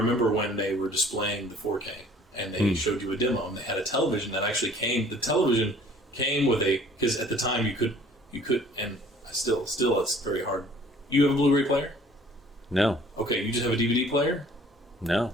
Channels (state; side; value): normal; both; correlation 0.53